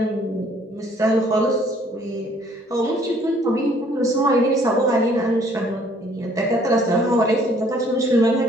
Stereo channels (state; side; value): normal; both; correlation 0.60